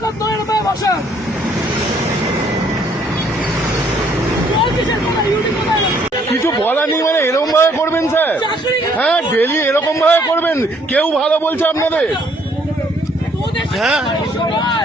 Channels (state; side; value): normal; both; correlation 0.65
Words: নয়, এরকম বসেন। কিছু বলা নেই মানে এরকম ভাবে করবেন স্যার? হ্যাঁ, ডেলি এরকম ভাবে করবেন? কেউ ভালো বলছে আপনাদের? হ্যাঁ